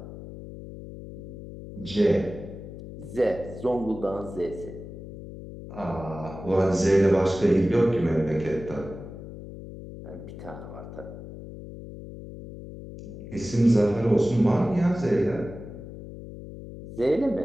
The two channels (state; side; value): noise; left; hum, 13 dB below the sound